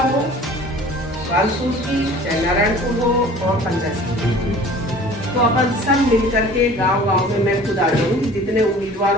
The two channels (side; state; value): both; normal; correlation 0.46